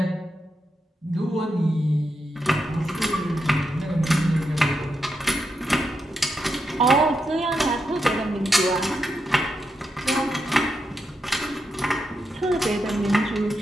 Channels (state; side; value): normal; both; correlation 0.85